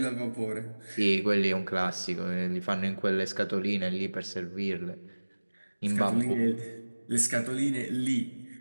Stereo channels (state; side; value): inverted; both; correlation -1.00